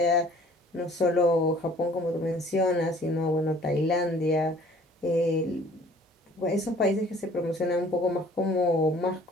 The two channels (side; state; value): both; normal; correlation 0.53